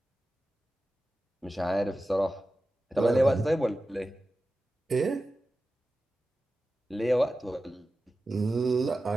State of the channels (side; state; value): both; normal; correlation 0.94